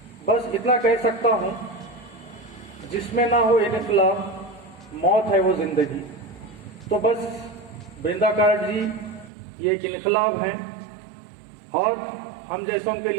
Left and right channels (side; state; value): left; drops out; at 9.3 s